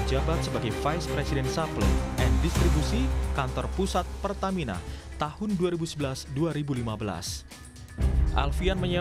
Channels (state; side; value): identical; both; correlation 1.00